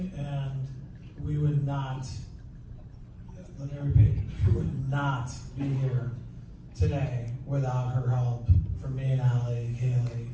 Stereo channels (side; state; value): both; identical; correlation 1.00